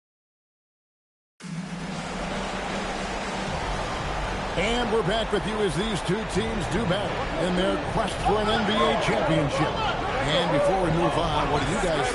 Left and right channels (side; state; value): both; identical; correlation 1.00